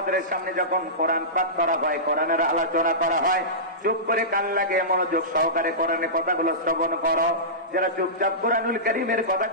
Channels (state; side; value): normal; both; correlation -0.20